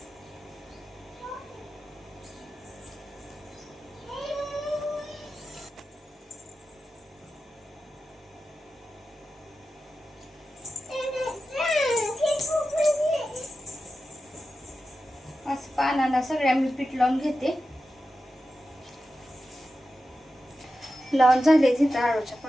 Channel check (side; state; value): both; normal; correlation 0.92